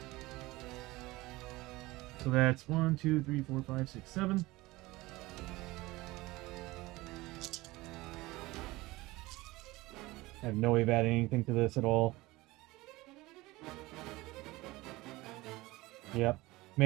So that's 1, 2, 3, 4, 5, 6, 7. I have no way of adding anything to this at all. Yep.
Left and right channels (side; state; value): left; quieter; 20.2 dB